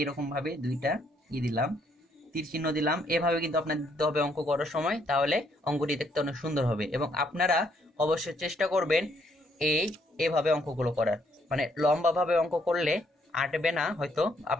ভাবে দুইটা দিলাম, তীর চিহ্ন দিলাম। এভাবে কিন্তু আপনাদের দিতে হবে অঙ্ক করার সময়, তাহলে অঙ্কটি দেখতে অনেক সুন্দর হবে। এবং আপনারা অবশ্যই চেষ্টা করবেন এভাবে অঙ্কগুলো করার, মানে লম্বাভাবে অঙ্ক করলে আটবে না হয়তো,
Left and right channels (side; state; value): both; normal; correlation 0.70